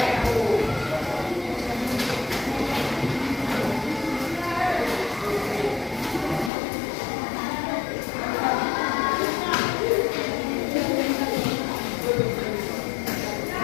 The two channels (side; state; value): right; drops out; at 6.5 s